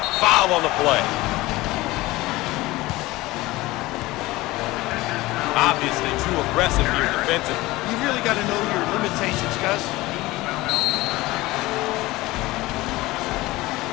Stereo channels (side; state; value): right; quieter; 19.4 dB